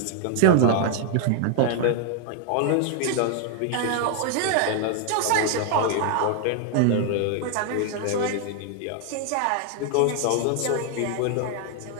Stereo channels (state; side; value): different; both; correlation 0.00